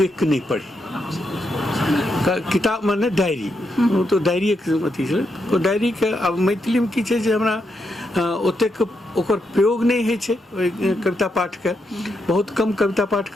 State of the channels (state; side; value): normal; both; correlation 0.82